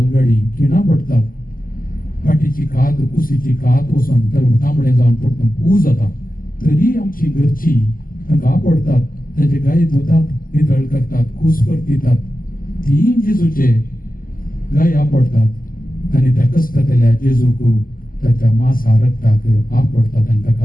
खिणां पडटात, फाटीची कात, कुशीची कात वचून तांबडे जावन पडटून पू जाता. तरी आमची घरची तांकां आपडटात, ताचे गाय धुतात, नितळ करतात, कूस परतितात. तीन जेजूचे गाय आपडतात आनी त्या कश्टतल्या जेजूक ताच्या मासा रक्ताक आपडतात आनी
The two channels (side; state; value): right; late; 0.41 ms